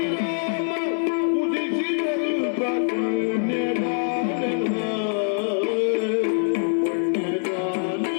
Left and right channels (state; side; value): silent; right; digital silence